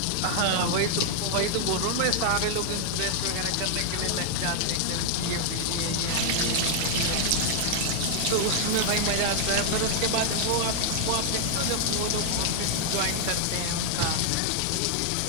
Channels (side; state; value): both; different; correlation 0.00